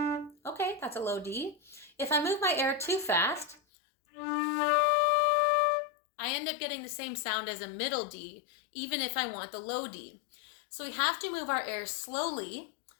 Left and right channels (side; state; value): right; drops out; at 3.6 s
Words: okay, that's a low D. If I move my air too fast, I end up getting the same sound as a middle D, even if I want the low D. So we have to move our air slowly,